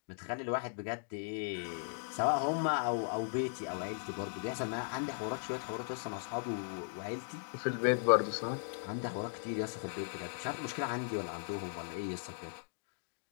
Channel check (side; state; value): right; silent; digital silence